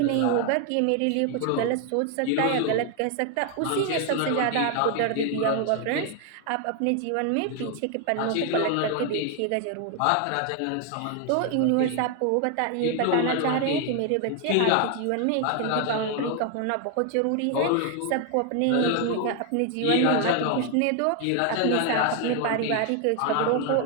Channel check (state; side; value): different; both; correlation 0.01